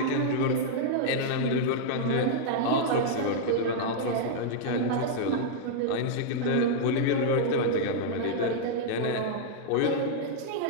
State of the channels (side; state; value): both; different; correlation -0.01